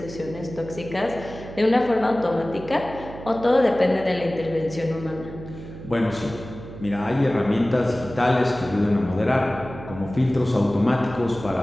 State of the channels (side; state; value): right; noise; hum, 13 dB below the sound